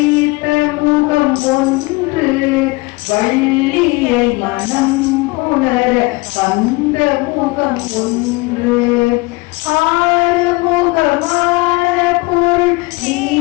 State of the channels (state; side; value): quieter; right; 24.0 dB